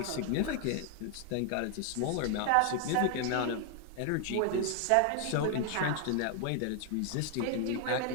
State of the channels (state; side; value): different; both; correlation 0.00